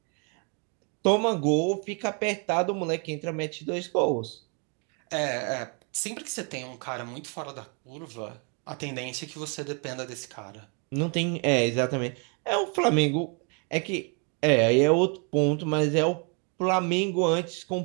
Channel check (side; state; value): left; quieter; 36.8 dB